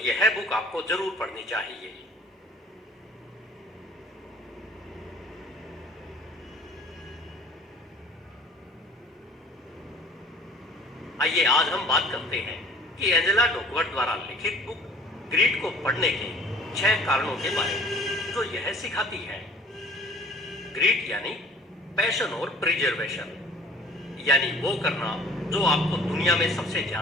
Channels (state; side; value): normal; both; correlation 0.50